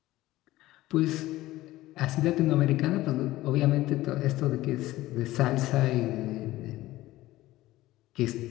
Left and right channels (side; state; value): right; quieter; 16.8 dB